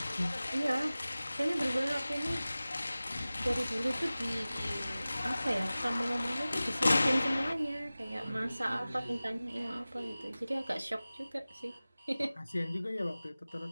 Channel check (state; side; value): inverted; both; correlation -0.97